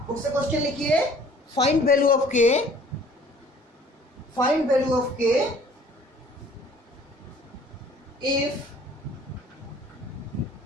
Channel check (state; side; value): normal; both; correlation 0.53